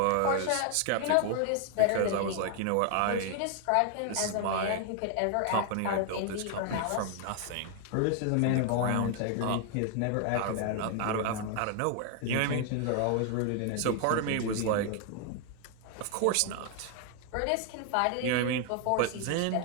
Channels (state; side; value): different; both; correlation 0.00